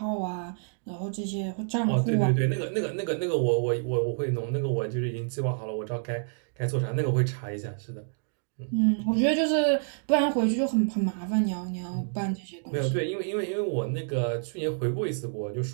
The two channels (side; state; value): left; silent; digital silence